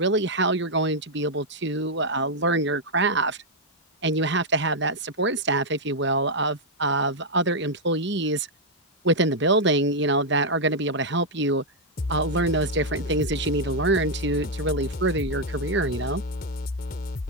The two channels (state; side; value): normal; both; correlation -0.02